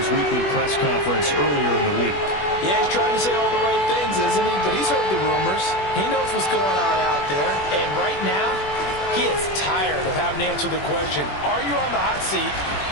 weekly press conference earlier in the week. Yeah, he's trying to say all the right things, isn't he? But he's heard the rumors. He knows what's going on out there. And right now, he is tired of having to answer the question, are you on the hot seat?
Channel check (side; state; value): right; late; 21 ms